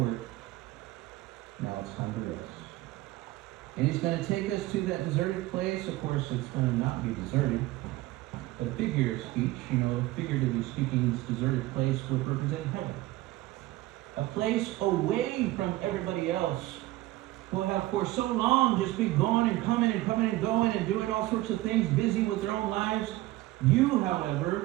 Now it's time to rest. And he's going to take us to that deserted place. Of course, it's going to not be deserted. But figure of speech, figuratively speaking, speaking, this deserted place would represent heaven. A place away from everybody else who have for so long just been going and coming and coming and going and doing all sorts of things, busy with their own lives. You,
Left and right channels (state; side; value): quieter; left; 17.6 dB